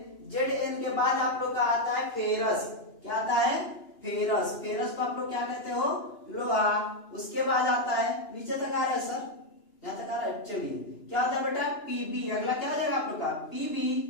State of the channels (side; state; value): right; late; 2.9 ms